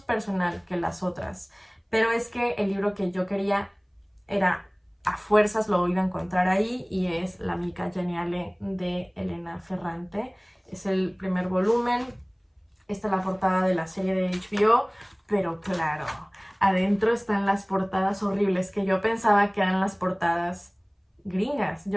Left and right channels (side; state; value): both; identical; correlation 1.00